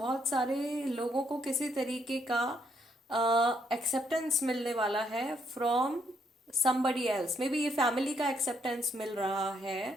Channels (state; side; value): normal; both; correlation 0.73